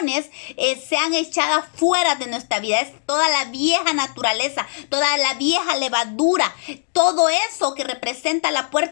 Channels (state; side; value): silent; right; digital silence